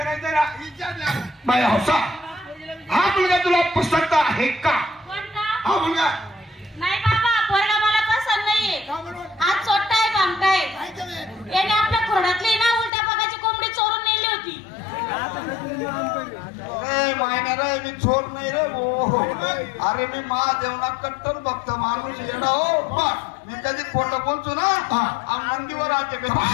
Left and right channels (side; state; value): right; drops out; at 12.9 s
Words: ना. बाई हौसा हा मुलगा तुला पसंत आहे का? हा मुलगा नाही बाबा पोरगा मला पसंत नाहीये. हात सोडताय बांधताय याने आपल्या खोडातली ना उलट्या पगाची कोंबडी चोरून नेली होती. मायना रे मी चोर नाही रे हो. अरे मी महादेवना कट्टर भक्त माणूस येणं हो. मी कधी खोटं बोलतो ना नंदीवर आते काय